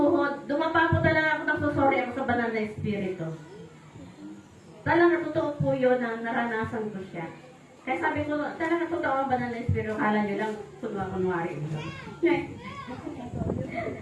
Dumapa po talaga ako, nagsusori ako sa banal na Espiritu. Talagang totoo po yun na naranasan ko siya. Kaya sabi ko, talagang totoo ang banal na Espiritu. Kala niyo lang, kunwari.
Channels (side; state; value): both; identical; correlation 1.00